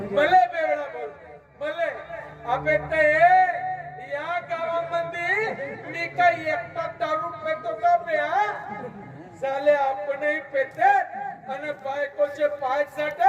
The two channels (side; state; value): both; identical; correlation 1.00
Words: बेवडा बोल भले अबे ते या गावामध्ये मी काही एकटा दारू पेतो का प्या साले आपणही पेतात आणि बायकोचे पाय